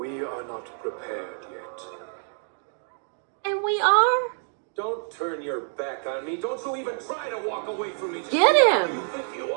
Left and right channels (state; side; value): silent; left; 60 dB below the other